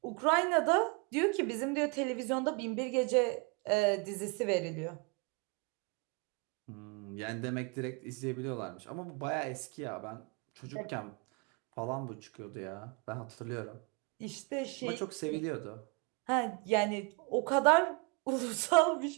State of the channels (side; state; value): left; quieter; 30.6 dB